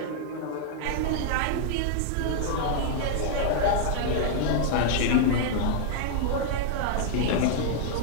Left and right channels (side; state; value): both; different; correlation -0.01